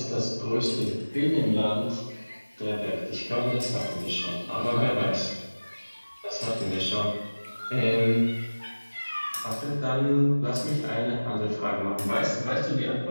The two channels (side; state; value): both; inverted; correlation -1.00